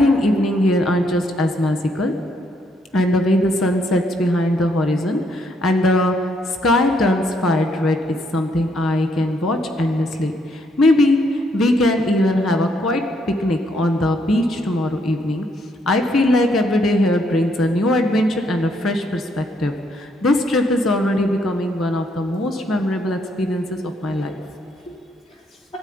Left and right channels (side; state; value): both; normal; correlation 0.72